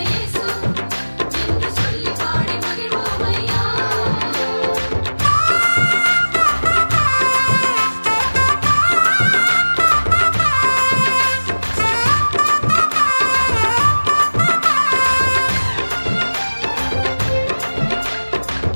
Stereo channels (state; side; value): inverted; both; correlation -1.00